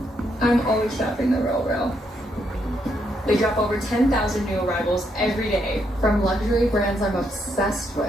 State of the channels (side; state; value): both; normal; correlation 0.77